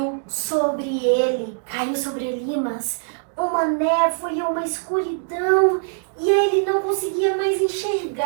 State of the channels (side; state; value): left; silent; digital silence